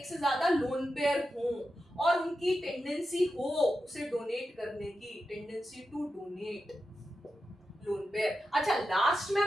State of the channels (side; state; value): both; normal; correlation 0.90